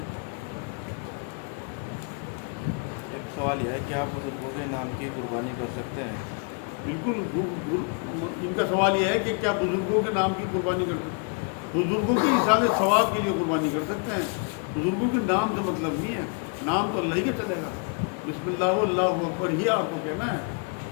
ایک سوال یہ ہے کہ آپ بزرگوں کے نام کی قربانی کر سکتے ہیں؟ بالکل. ان کا سوال یہ ہے کہ کیا بزرگوں کے نام کی قربانی کر سکتے ہیں؟ بزرگوں کی احسان ثواب کے لیے قربانی کر سکتے ہیں. بزرگوں کے نام سے مطلب نہیں ہے, نام تو اللہ ہی کا چلے گا. بسم اللہ اللہ اکبر ہی آپ کو کہنا ہے.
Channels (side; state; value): right; quieter; 34.7 dB